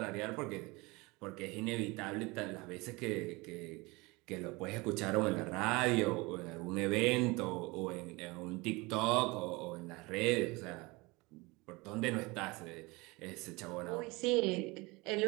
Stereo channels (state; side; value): quieter; left; 24.5 dB